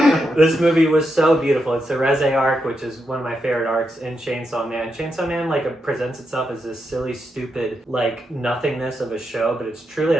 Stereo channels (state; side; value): normal; both; correlation 0.84